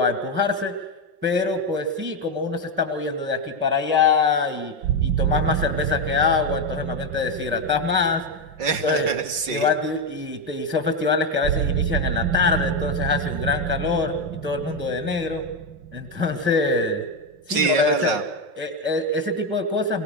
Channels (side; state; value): left; late; 5.6 ms